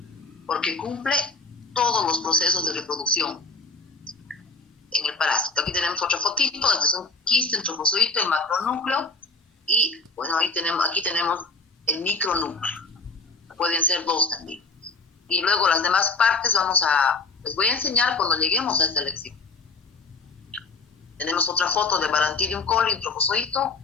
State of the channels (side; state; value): right; quieter; 3.8 dB